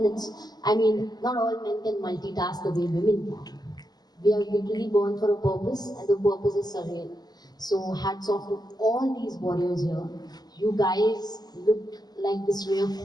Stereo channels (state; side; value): late; right; 0.20 ms